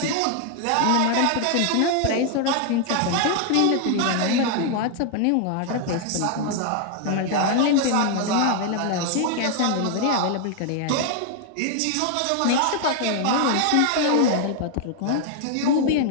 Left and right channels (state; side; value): different; both; correlation 0.00